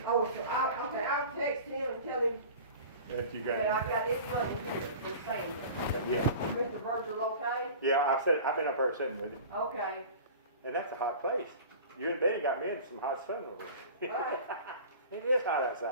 Oh, so I'll text him and tell him That you that I got. got his money here for Sandra. Yeah. Mr. Virgil, okay? Yeah, I've been up there sitting with him. Okay. And that's a hot place. You and Benny got me in some hot sun over there. Right. It is hot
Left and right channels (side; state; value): both; inverted; correlation -0.39